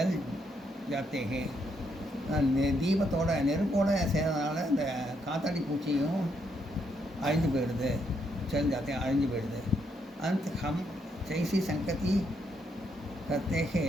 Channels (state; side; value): normal; both; correlation 0.76